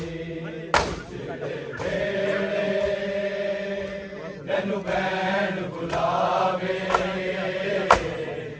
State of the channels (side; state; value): both; identical; correlation 1.00